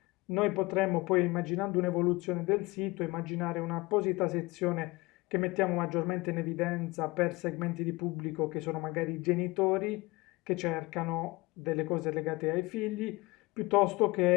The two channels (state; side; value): quieter; right; 22.9 dB